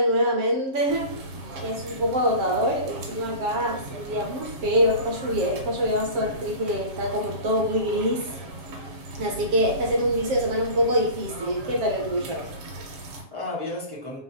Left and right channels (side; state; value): left; late; 7.3 ms